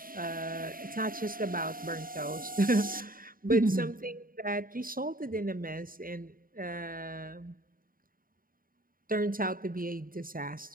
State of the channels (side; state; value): left; late; 0.41 ms